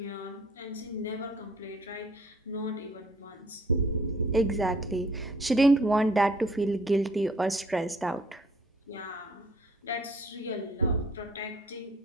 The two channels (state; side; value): normal; both; correlation 0.56